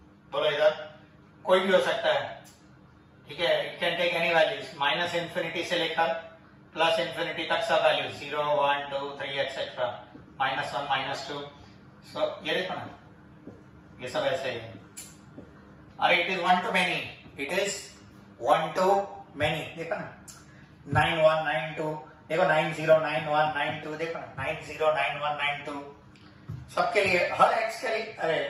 बोलो इधर कोई भी हो सकता है, ठीक है। It can take any values, minus infinity से लेकर प्लस इंफिनिटी तक सब वैल्यूज 0 1 2 3 एक्सेट्रा, -1 -2। सो ये देखो ना, ये सब ऐसे ही है। अरे it is 1 to many, it is 1 to many। देखो ना 9 1 9 2, देखो 9 0 9 1 9 2, देखो ना 9 0 9 1 9 2। सबके लिए, हर x के लिए, अरे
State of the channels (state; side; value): identical; both; correlation 1.00